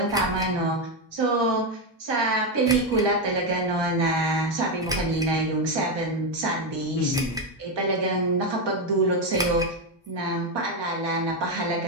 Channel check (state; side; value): normal; both; correlation 0.08